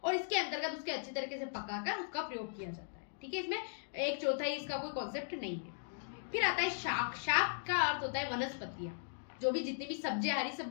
और इसके अंतर्गत उसके अच्छी तरीके से पकाकर उसका प्रयोग किया जाता है, ठीक है। इसमें 1/4 इसका कोई कॉन्सेप्ट नहीं है। फिर आता है शाक। शाक का अर्थ होता है वनस्पतियां, जो भी जितनी भी सब्जियां, हरी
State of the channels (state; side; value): silent; right; digital silence